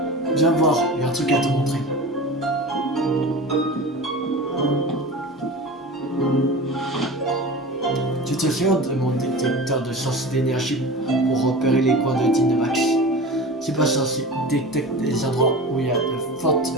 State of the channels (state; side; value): normal; both; correlation 0.33